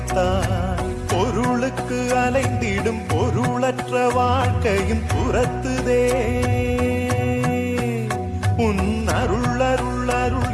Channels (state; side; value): identical; both; correlation 1.00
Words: பொருளுக்கு அலைந்திடும் பொருளற்ற வாழ்க்கையும் புறத்துதே உன் அருள் அருள் அருள்